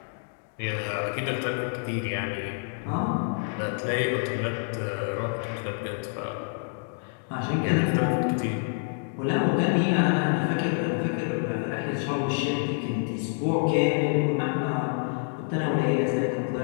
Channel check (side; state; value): right; silent; 60 dB below the other